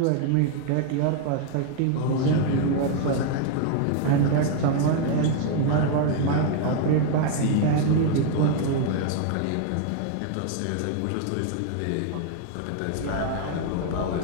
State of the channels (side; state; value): both; different; correlation 0.00